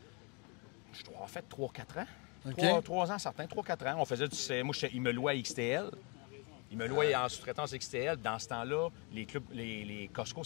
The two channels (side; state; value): right; quieter; 31.8 dB